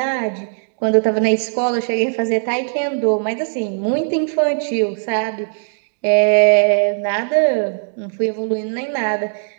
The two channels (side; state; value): left; silent; digital silence